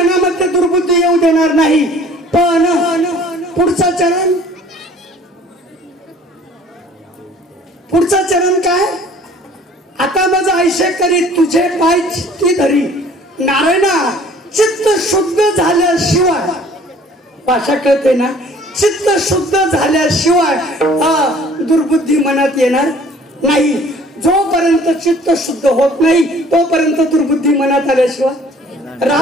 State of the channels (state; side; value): normal; both; correlation 0.53